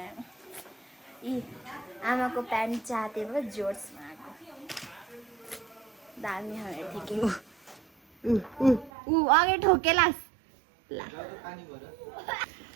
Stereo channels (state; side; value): drops out; left; at 8.9 s